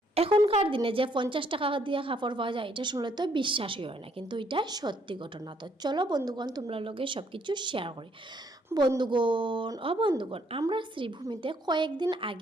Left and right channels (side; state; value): both; normal; correlation 0.68